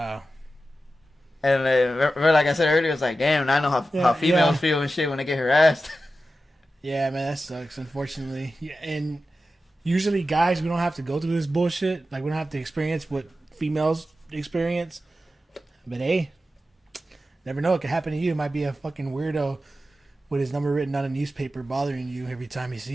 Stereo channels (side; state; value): both; normal; correlation 0.92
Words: And like I said earlier, it's like, damn, I know how females feel and shit when they get harassed. Yeah, man, that sucks. Unfortunately, and usually guys, we don't have to go through this bullshit. Like we don't have to experience what females experience. But hey, never know. It could happen to you. It might be a fucking weirdo with his number written on a newspaper bothering you every time he